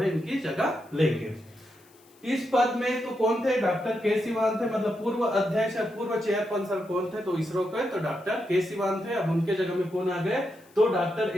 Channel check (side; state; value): left; noise; hiss, 29 dB below the sound